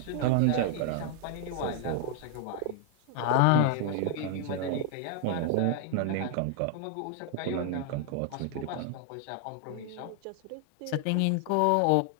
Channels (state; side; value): different; both; correlation 0.00